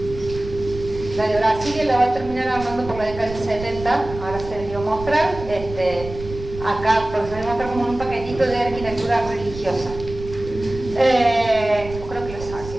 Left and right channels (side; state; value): right; noise; rumble, 12 dB below the sound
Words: La de Brasilia la va a terminar armando por la década del 70, ahora se les dio a mostrar. Acá, porque se les muestra como un paquetito de arquitectura religiosa. Creo que lo